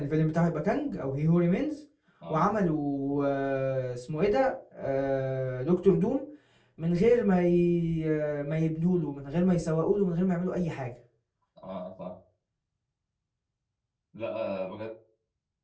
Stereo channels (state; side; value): identical; both; correlation 1.00